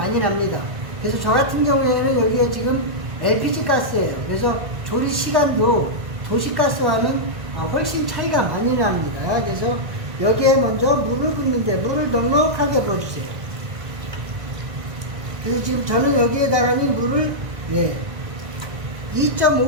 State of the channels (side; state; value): left; late; 1.6 ms